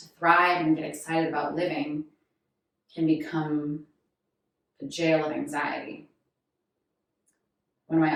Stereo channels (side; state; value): both; identical; correlation 1.00